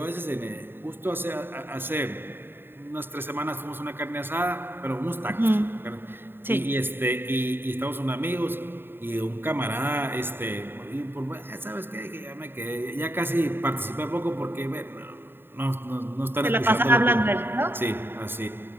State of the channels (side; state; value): left; late; 0.10 ms